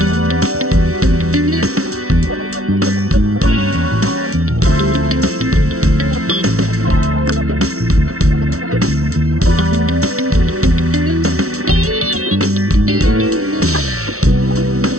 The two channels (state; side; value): late; left; 0.64 ms